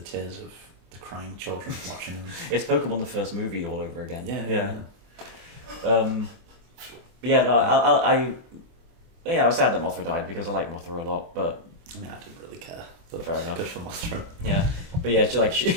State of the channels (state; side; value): late; left; 24 ms